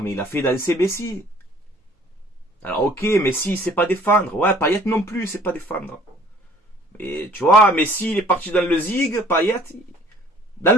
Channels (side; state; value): both; normal; correlation 0.54